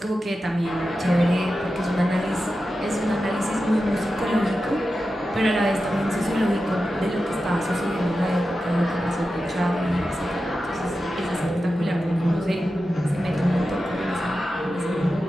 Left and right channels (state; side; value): normal; both; correlation 0.92